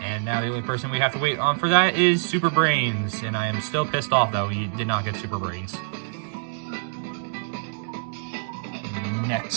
And now the only person we have to wait on for that is Super Brains. And I am still pissed off that we did not get Super Brains.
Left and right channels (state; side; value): silent; left; digital silence